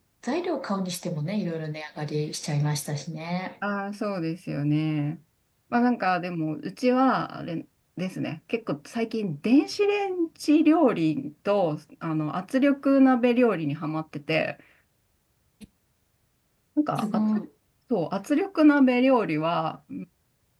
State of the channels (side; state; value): both; identical; correlation 1.00